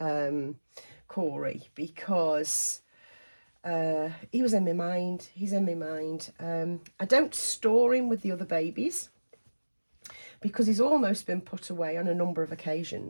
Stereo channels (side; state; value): both; inverted; correlation -1.00